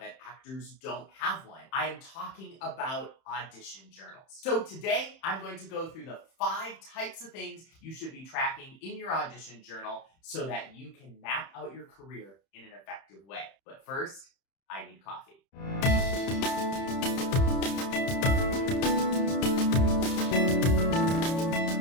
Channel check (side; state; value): right; late; 31 ms